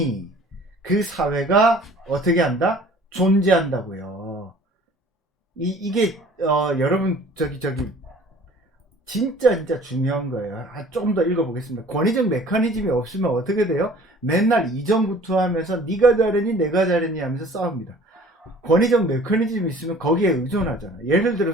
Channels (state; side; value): normal; both; correlation 0.50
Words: 그 사회가 어떻게 한다? 존재한다고요. 이게 여러분 저기 진짜 중요한 거예요. 조금 더 읽어보겠습니다. 권위적 메커니즘이 없으면 어떻게 돼요? 맨날 이전구투하면서 네가 잘했니 내가 잘했니 하면서 싸웁니다. 권위적 메커니즘이 있으면 거기에 의존하잖아. 예를